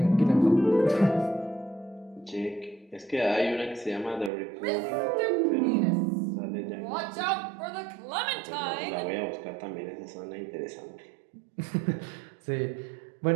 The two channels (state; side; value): drops out; left; at 4.3 s